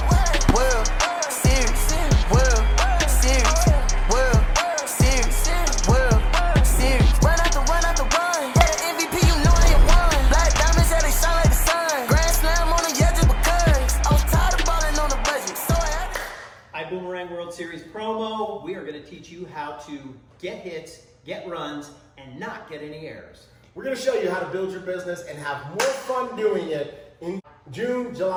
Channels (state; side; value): identical; both; correlation 1.00